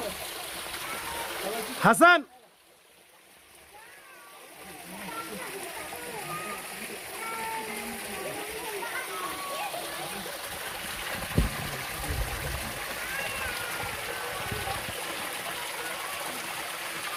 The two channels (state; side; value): identical; both; correlation 1.00